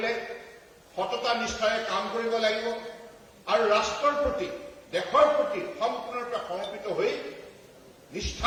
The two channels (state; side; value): identical; both; correlation 1.00